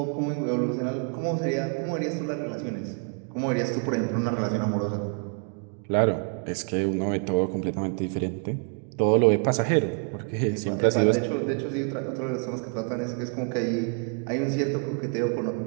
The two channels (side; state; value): left; quieter; 39.4 dB